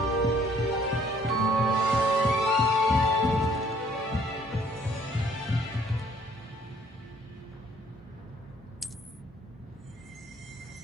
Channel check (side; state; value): both; normal; correlation 0.61